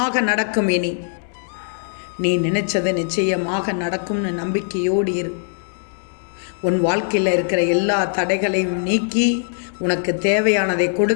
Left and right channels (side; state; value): right; silent; 65 dB below the other